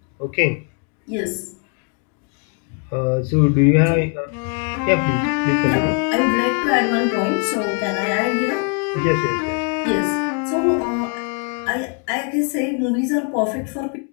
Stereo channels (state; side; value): quieter; right; 39.3 dB